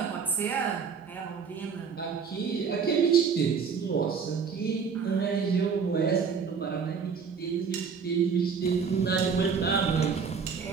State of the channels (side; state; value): left; quieter; 6.0 dB